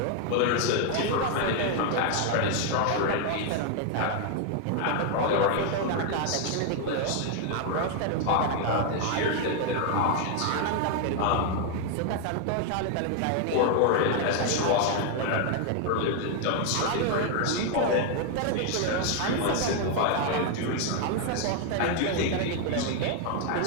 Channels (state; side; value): different; both; correlation 0.00